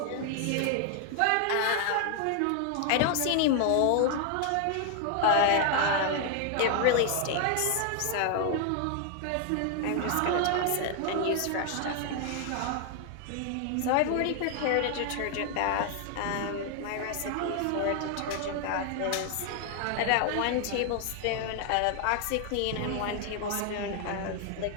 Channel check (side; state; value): both; different; correlation 0.00